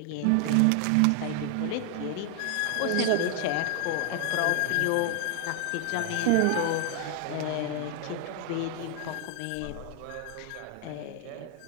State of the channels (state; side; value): different; both; correlation 0.00